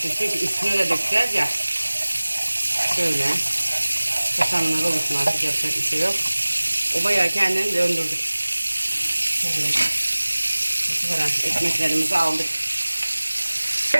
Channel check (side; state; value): both; inverted; correlation -1.00